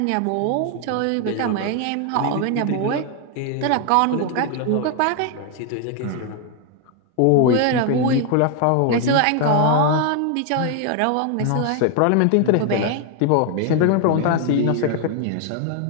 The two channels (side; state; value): both; different; correlation 0.00